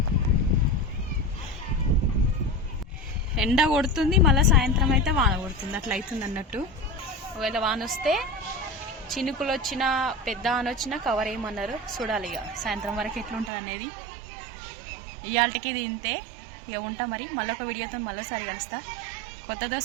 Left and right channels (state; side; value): drops out; left; at 13.5 s